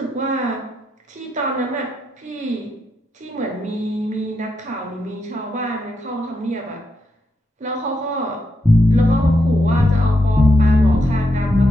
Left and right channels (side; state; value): both; normal; correlation 0.83